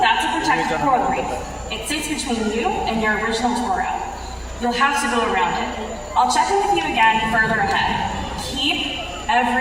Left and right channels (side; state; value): both; identical; correlation 1.00